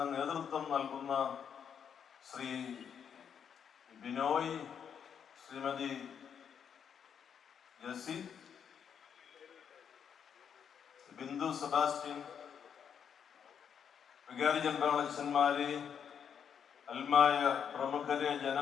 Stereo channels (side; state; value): right; quieter; 7.7 dB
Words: നേതൃത്വം നൽകുന്ന ശ്രീ ബിനോയ്, ശ്രീമതി ജസി, ബിന്ദു സെബാസ്റ്റ്യൻ, വികാരി ജനറലച്ഛന്മാരെ, അൽമായ പ്രമുഖരെ,